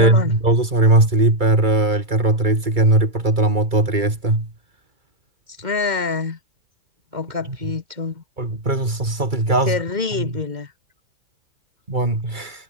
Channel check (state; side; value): late; left; 2.3 ms